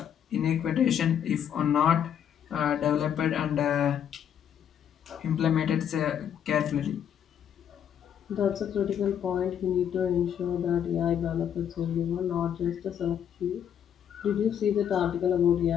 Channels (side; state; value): right; quieter; 9.0 dB